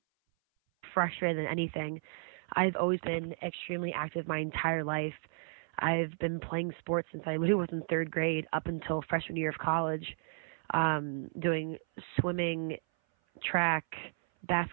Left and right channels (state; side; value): silent; left; 55 dB below the other